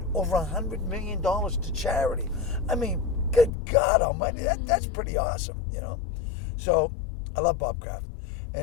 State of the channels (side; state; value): right; drops out; at 3.5 s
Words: over $100 million to charity. I mean, good God almighty, that's pretty awesome, you know. So I love Bob Kraft.